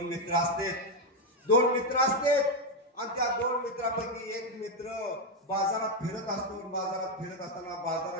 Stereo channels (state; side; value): normal; both; correlation 0.05